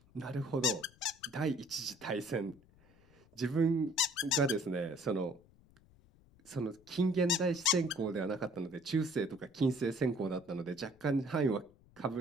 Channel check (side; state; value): left; noise; rumble, 28 dB below the sound